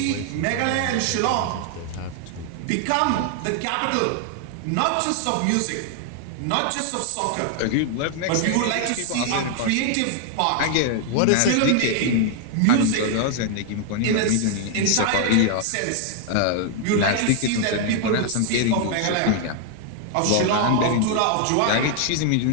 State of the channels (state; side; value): different; both; correlation 0.00